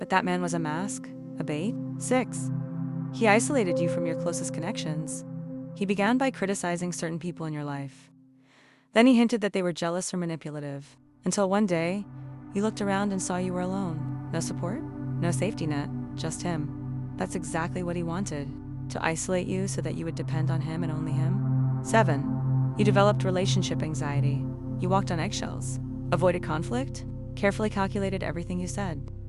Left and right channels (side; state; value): both; identical; correlation 1.00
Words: that man was a mask, a bait. 6. He isolated you from your closest connections. He began by criticizing certain people in your life. Then he hinted that they were jealous or manipulative, until one day, you looked around and saw you were alone. No support, no safety net, just him. That's exactly what he wanted, to isolate you so that you would depend on him and only him. 7. You developed relationship anxiety. You walked on eggshells, avoided conflict, carefully calculated everything you said.